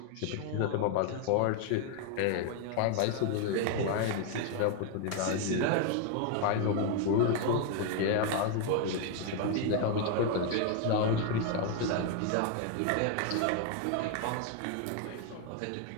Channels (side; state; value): both; different; correlation 0.01